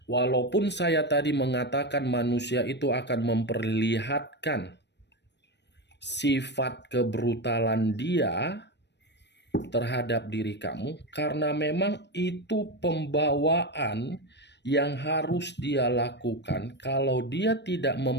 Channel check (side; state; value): right; late; 0.50 ms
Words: Walaupun saya tadi mengatakan manusia itu akan memperlihatkan sifat kebrutalan dia terhadap diri kamu, karena memang itu pembawaan yang harus dia lakukan kalau dia tidak